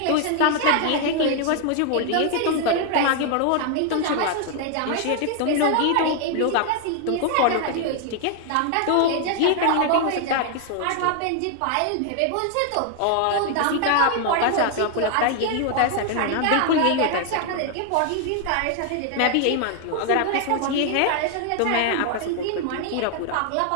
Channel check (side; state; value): both; different; correlation 0.00